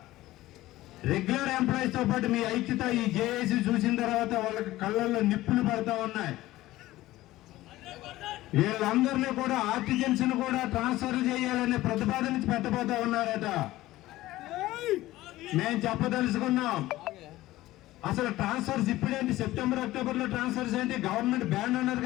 రెగ్యులర్ ఎంప్లాయీస్ తో పాటు మీ ఐక్యత ఈ జేఏసీ చూసిన తర్వాత వాళ్ళకి కళ్ళల్లో నిప్పులు పడతా ఉన్నాయి. వీళ్ళందరినీ కూడా ఆర్టిజన్స్ ను కూడా ట్రాన్స్ఫర్ చేయాలనే ప్రతిపాదన పెట్టబోతా ఉన్నారట. మేము చెప్పదలుచుకున్నాం, అసలు ట్రాన్స్ఫర్స్ ఇప్పుడేంటి? సెప్టెంబర్ అక్టోబర్ లో ట్రాన్స్ఫర్స్ ఏంటి? గవర్నమెంట్ బ్యాన్ అన్నారు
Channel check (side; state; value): right; quieter; 16.6 dB